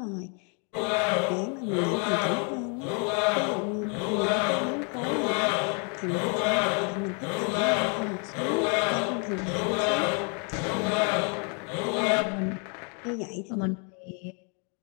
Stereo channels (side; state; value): right; quieter; 37.9 dB